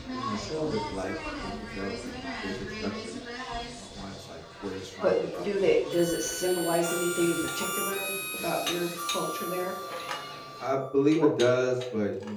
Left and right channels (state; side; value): identical; both; correlation 1.00